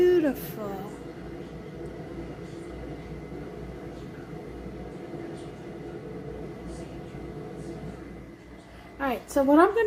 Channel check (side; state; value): both; identical; correlation 1.00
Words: Alright, so what I'm